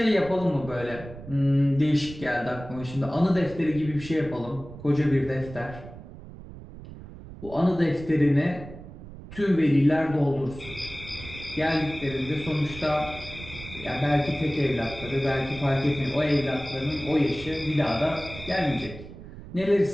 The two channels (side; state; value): right; noise; rumble, 15 dB below the sound